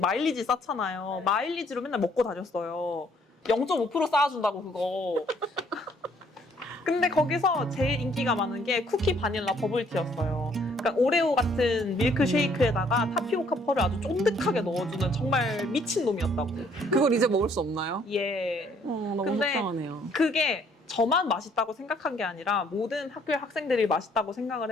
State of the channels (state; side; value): normal; both; correlation 0.64